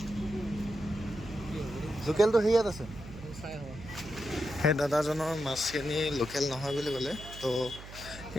লোকেলটো হেৰিয়াত আছে। সেই দাদাজনৰ মাছখিনি লোকেল নহয় বুলি ক'লে। তো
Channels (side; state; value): right; noise; hum, 14 dB below the sound